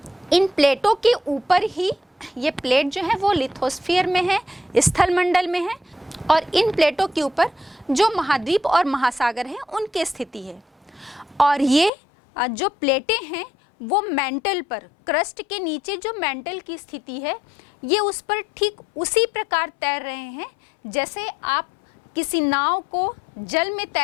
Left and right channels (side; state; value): right; drops out; at 11.9 s